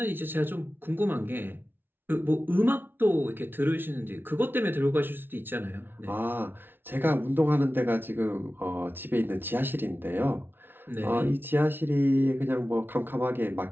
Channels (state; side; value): late; left; 0.10 ms